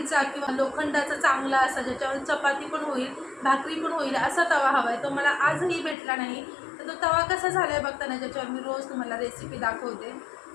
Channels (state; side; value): drops out; right; at 6.0 s